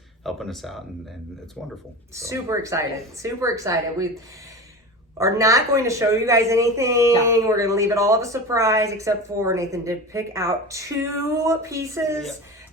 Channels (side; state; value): both; normal; correlation 0.30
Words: helping us out, and it's wonderful. So. Super excited. We are not going to show you guys anything. No. We're going to leave it all of a surprise, except for Nathan did pick out 2 pieces